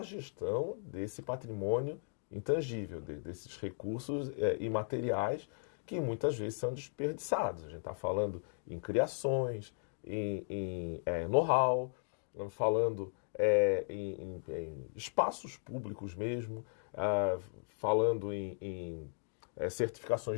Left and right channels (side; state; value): right; silent; digital silence